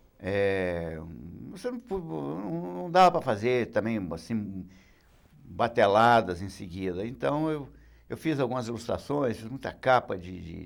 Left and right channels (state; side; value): identical; both; correlation 1.00